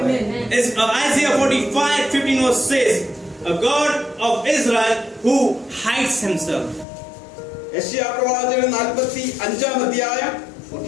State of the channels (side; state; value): right; drops out; at 6.9 s